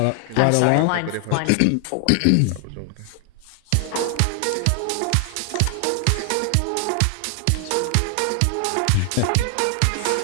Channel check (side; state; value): both; different; correlation 0.00